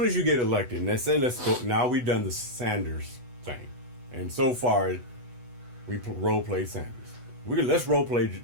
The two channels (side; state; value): left; late; 8.1 ms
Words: as you get elected, and they say, let's go, now we've done the Sanders thing. And so far, we role play Sanders. Let's role play